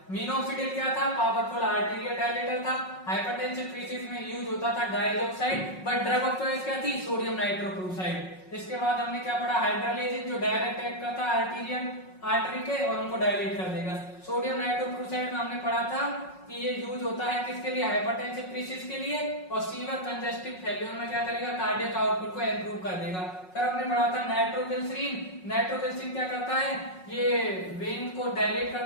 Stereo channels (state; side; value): late; right; 5.4 ms